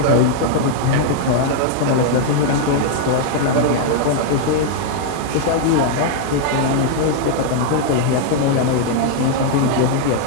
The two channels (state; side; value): different; both; correlation 0.00